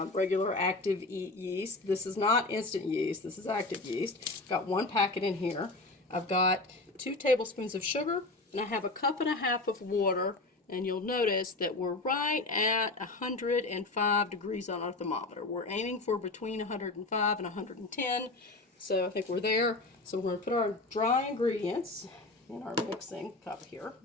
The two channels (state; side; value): quieter; right; 3.1 dB